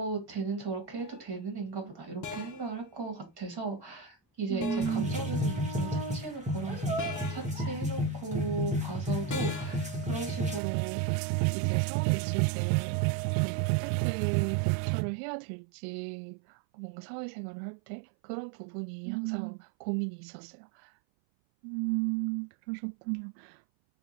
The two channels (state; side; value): drops out; left; at 10.6 s